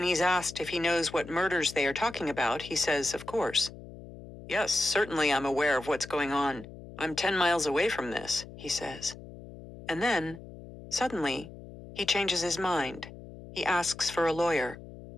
he's asked if he knows what murders they are talking about, he says, of course. Yes, certainly I'm aware of what's going on. I'm 10 miles away from this, he says. And then, suddenly, he changes his mind. He asks for a lawyer.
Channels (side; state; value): left; noise; hum, 15 dB below the sound